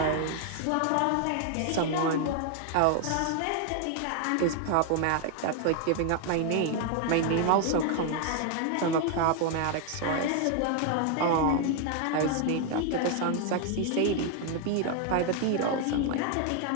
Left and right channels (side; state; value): both; different; correlation 0.00